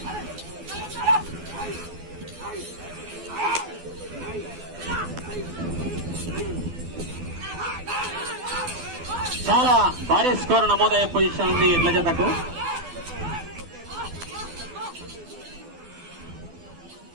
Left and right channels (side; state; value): left; late; 12 ms